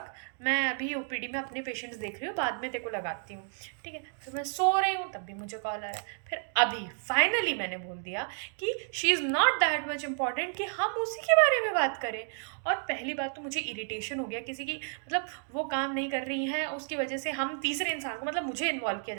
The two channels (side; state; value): left; silent; 57 dB below the other